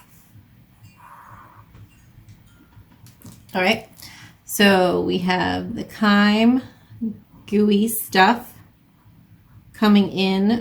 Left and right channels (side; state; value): both; identical; correlation 1.00